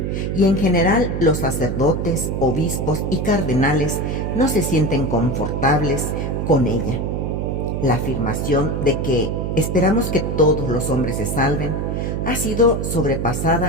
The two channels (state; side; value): noise; right; hum, 2 dB below the sound